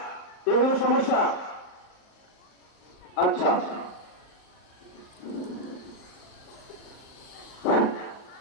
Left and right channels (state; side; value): late; right; 38 ms